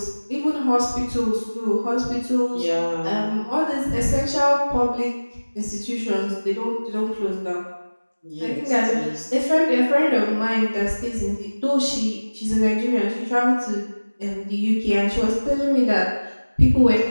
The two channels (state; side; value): inverted; both; correlation -1.00